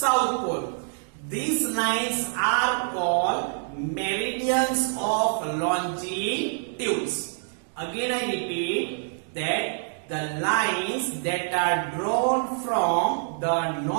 Pole. These lines are called meridians of longitudes. Again I repeat that the lines that are drawn from the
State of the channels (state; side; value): silent; left; digital silence